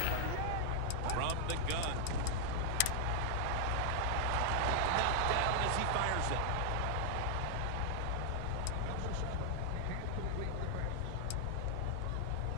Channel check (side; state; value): both; different; correlation 0.00